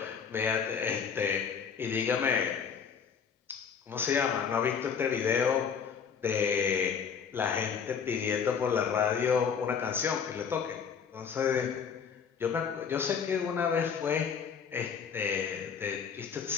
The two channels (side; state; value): right; quieter; 6.8 dB